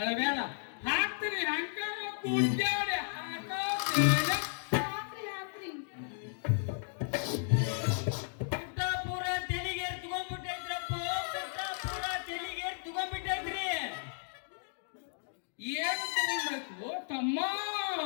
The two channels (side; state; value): right; silent; digital silence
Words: ಹಾಕ್ತೀನಿ ಹಂಗಾರ ಕೂಡ್ಯಾಡಿ ಹಾಕೋದೇನ ಹಾಕ್ರಿ ಹಾಕ್ರಿ ಪುಟ್ಟಾಪುರ ತೆಲಿಗೆ ತಗೊಂಡ್ಬಿಟ್ಟೈತ್ರಪ್ಪ ಪುಟ್ಟಾಪುರ ತೆಲಿಗೆ ತಗೊಂಡ್ಬಿಟ್ಟೈತ್ರಿ ಏನ್ ತಗೊಳ್ಬೇಕು ತಮ್ಮ